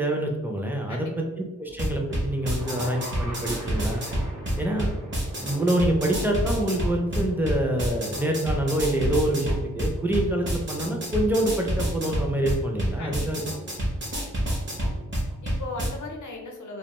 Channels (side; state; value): both; normal; correlation 0.68